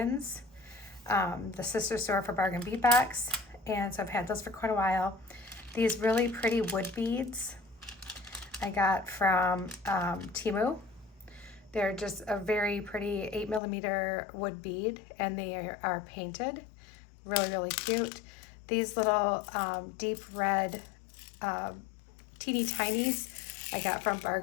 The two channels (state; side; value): drops out; right; at 13.6 s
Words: the sister store for Bargain Beadbox. And so I've had those for quite a while. These really pretty wood beads I got from Temu. They're just a very pretty 8mm wood bead, and they are painted. Really, really cute. These little deep red teeny tinies I got from